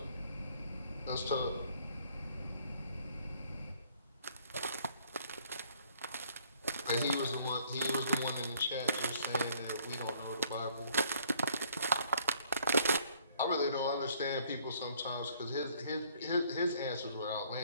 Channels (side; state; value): both; inverted; correlation -0.62